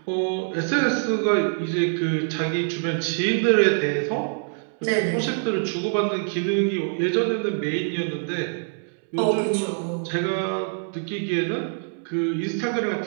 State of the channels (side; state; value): left; silent; 62 dB below the other